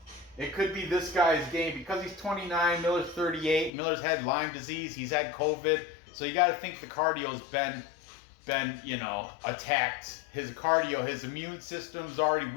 it could be this guy's game, because he's 29, Miller's 38. Miller's had Lyme disease, he's had COVID, so you got to think the cardio's been attacked. His cardio, his immune system's already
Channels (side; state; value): right; drops out; at 3.7 s